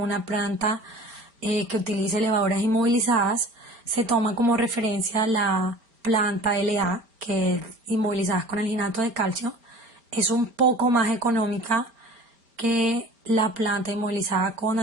planta que utilice levaduras inmovilizadas, se toma como referencia la planta LA, que es inmovilizadas con alginato de calcio. Es un poco más económica que la planta inmovilizada con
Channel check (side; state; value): left; late; 4.4 ms